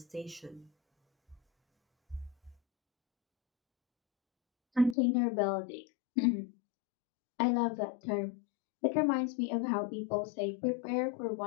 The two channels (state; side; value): drops out; right; at 5.0 s